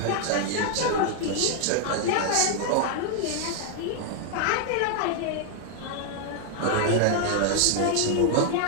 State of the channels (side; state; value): both; different; correlation 0.00